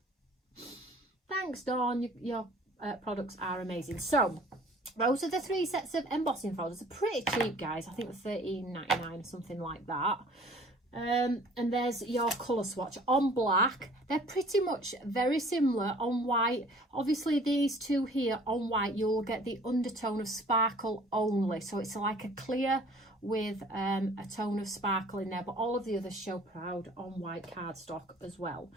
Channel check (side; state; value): both; normal; correlation 0.51